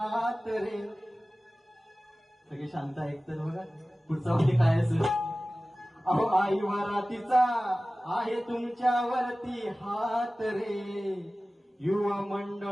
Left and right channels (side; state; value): both; normal; correlation 0.97